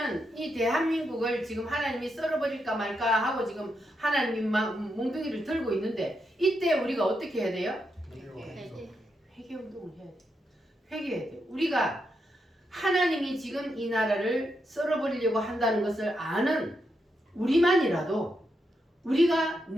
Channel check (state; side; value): normal; both; correlation 0.83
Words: 이 대한민국을 지금 하나님이 썰어버릴까 말까 하고 지금 하나님이 몽둥이를 들고 있는데, 이때 우리가 어떻게 해야 돼요? 회개 운동을 해야 돼요. 회개해야 돼요. 우리가 하나님이 지금 이 나라를 썰어버리려고 한다는 것을 아는 우리만이라도, 우리가